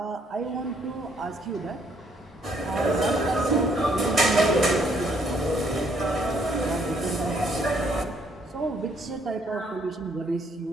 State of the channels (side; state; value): both; normal; correlation 0.68